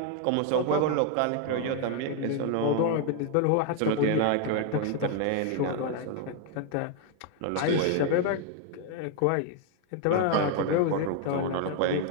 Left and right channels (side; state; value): both; different; correlation 0.00